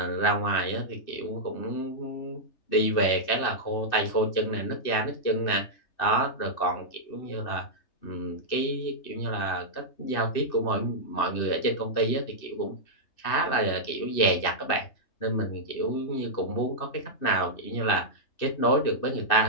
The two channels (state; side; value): late; right; 2.7 ms